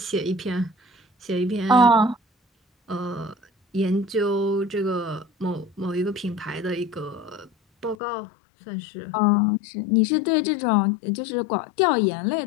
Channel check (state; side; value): drops out; right; at 8.0 s